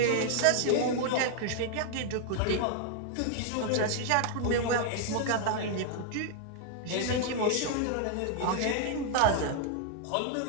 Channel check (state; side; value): different; both; correlation 0.00